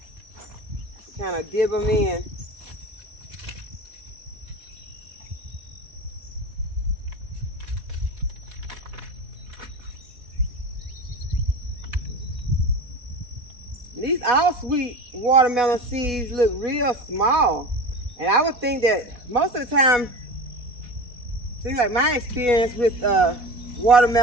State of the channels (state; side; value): late; left; 4.1 ms